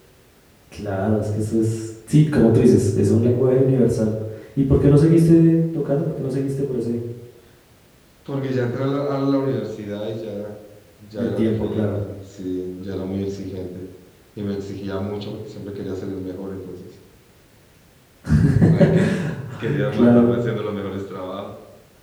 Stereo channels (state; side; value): identical; both; correlation 1.00